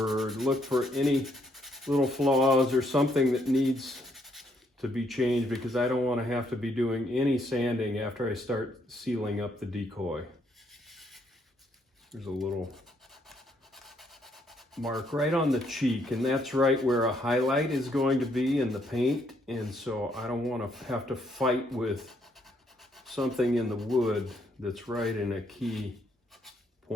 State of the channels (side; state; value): both; normal; correlation 0.72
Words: look for any little flaws or something that needs to be changed, because I don't want to have to be doing any sanding after I start sealing up the decoy. There's a little mark right on the cheek, and that's right where a highlight is going to be in the paint, and so I don't want to have to fight with something in the wood that's right in a key